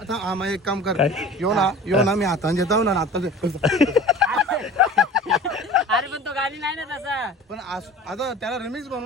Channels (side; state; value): both; normal; correlation 0.41